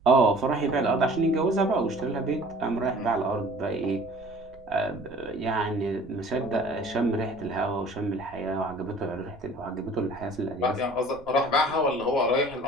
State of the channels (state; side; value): noise; right; rumble, 22 dB below the sound